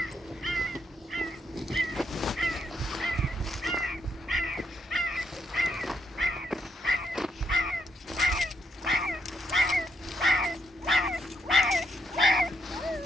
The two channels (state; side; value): normal; both; correlation 0.78